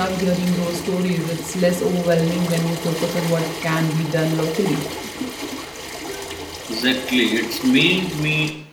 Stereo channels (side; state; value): both; identical; correlation 1.00